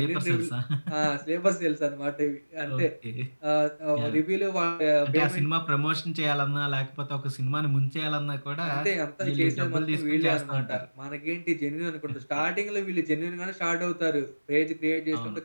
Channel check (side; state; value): both; inverted; correlation -1.00